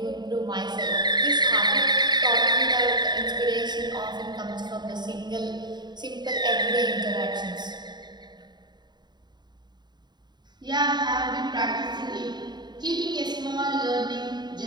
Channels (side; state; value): left; late; 0.21 ms